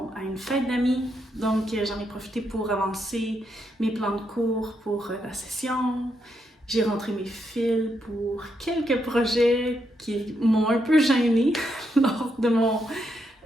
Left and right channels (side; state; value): both; normal; correlation 0.80